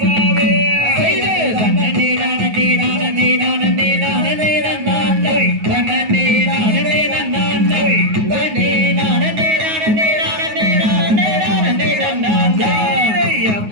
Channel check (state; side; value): late; left; 9.4 ms